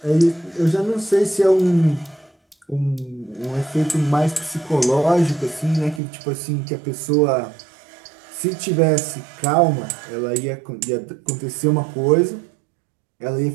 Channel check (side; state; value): left; drops out; at 6.0 s